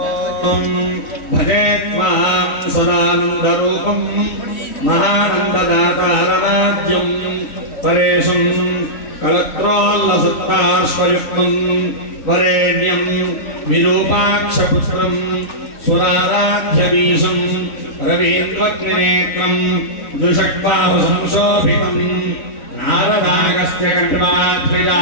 भजे त्वां सदानन्दरूपं महानन्ददातारमाद्यं परेशं कलत्रोल्लसत्पार्श्वयुक्तं वरेण्यं विरूपाक्षपुत्रं सुराराध्यवीशं रवीन्द्रग्निनेत्रं द्विषड्बाहुसंशोभितं नारदागस्य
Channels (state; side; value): late; right; 3.1 ms